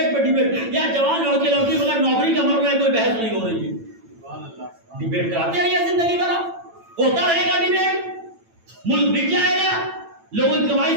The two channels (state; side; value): late; left; 8.9 ms